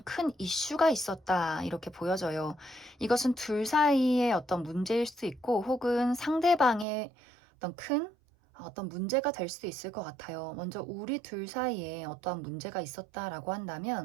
큰 이슈가 있었다, 이렇게 보여져요. 이것은 둘 사이의 어떤 문제일 수 있고, 혹은 상대방의 어떤 문제가 될 수 있을 것 같아요. 먼저 우리 둘 사이에 어떠한 문제가 있었다라고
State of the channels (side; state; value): left; drops out; at 6.9 s